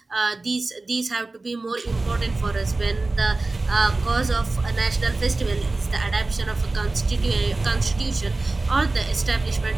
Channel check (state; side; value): quieter; left; 3.3 dB